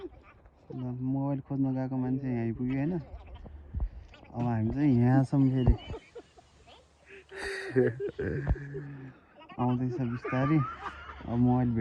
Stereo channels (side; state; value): both; identical; correlation 1.00